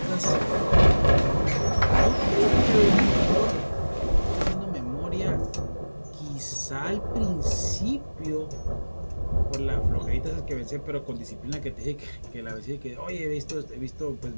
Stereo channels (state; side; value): inverted; both; correlation -1.00